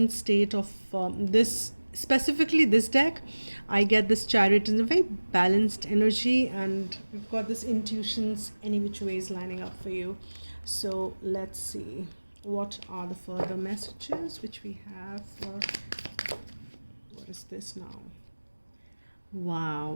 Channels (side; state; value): both; inverted; correlation -1.00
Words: state of this, specifically this deck. I get this Chariot in a very balanced energy, and we've got this intuitions any which ways lining up for you. So let's see what are the further messages which we have for, what is this now?